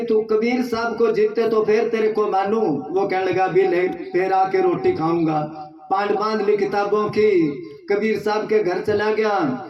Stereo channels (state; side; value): identical; both; correlation 1.00